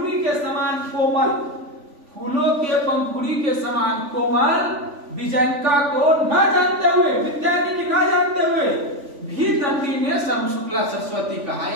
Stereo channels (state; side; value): late; left; 3.4 ms